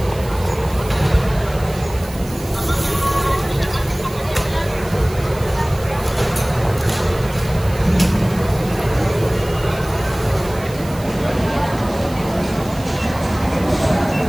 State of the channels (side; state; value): right; noise; hiss, 18 dB below the sound